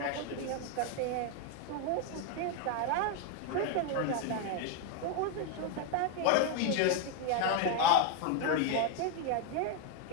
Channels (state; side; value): different; both; correlation 0.01